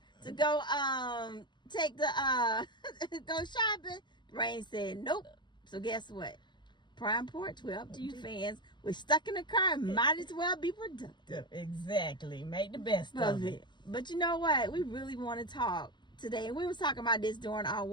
to go take the go shopping. Rain said nope. So guess what? Prime Porch, we're up to you fans. We're stuck in the car. Might as well be productive. Exactly. Make the best of it. But you know what? We really want to talk today. And we was talking about this during our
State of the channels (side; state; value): right; late; 0.22 ms